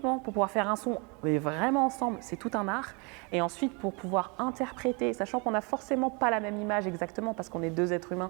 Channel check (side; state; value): left; quieter; 31.5 dB